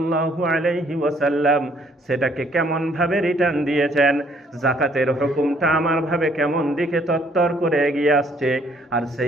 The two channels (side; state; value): both; normal; correlation 0.64